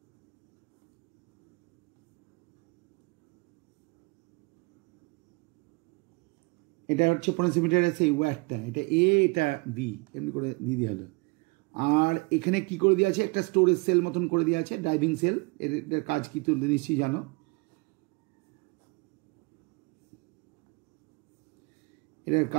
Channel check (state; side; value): quieter; left; 28.5 dB